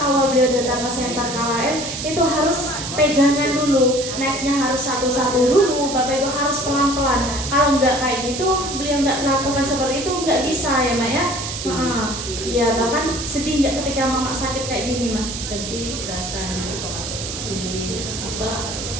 awal beliau datang ke center KLM itu harus pegangan dulu, naiknya harus satu-satu dulu Bapak Ibu, harus pelan-pelan. Kalau nggak kayak gitu beliau nggak melakukan seperti itu nggak bisa ya Mak ya. Iya bahkan sedih nggak ketika Mama sakit kayak gini Mak? Sedih rasanya, ini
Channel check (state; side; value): noise; right; hiss, 6 dB below the sound